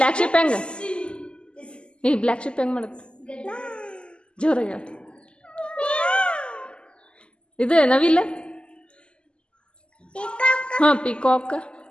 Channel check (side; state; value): right; late; 0.051 ms